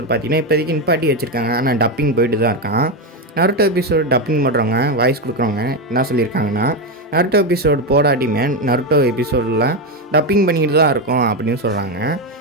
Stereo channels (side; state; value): both; normal; correlation 0.10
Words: பார்த்தீங்கன்னா இப்போதைக்கு நிப்பாட்டி வச்சுருக்காங்க, ஆனால் டப்பிங் போயிட்டு தான் இருக்கான். நருட்டோ எபிசோடு டப்பிங் பண்ணுறவங்க, வாய்ஸ் கொடுக்குறவங்க என்ன சொல்லியிருக்காங்கன்னா, நருட்டோ எபிசோடு போடாட்டியுமே நருட்டோ எபிசோடில் டப்பிங் பண்ணிக்கிட்டு தான் இருக்கும் அப்படின்னு சொல்கிறாங்க.